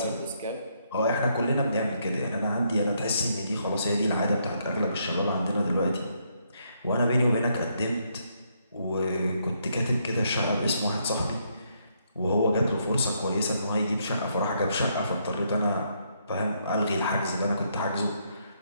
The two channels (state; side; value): inverted; both; correlation -0.74